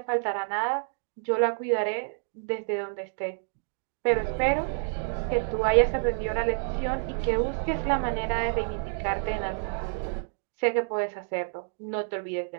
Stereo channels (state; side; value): silent; left; digital silence